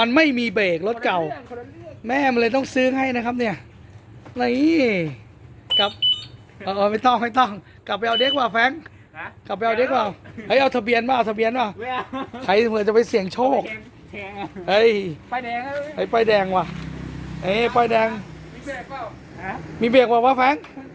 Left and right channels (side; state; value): both; identical; correlation 1.00